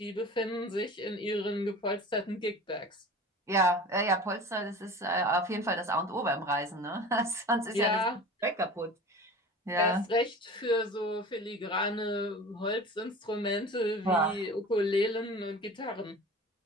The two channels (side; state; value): both; normal; correlation 0.37